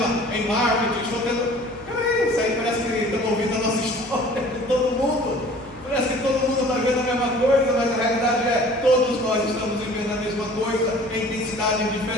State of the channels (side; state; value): right; noise; hum, 24 dB below the sound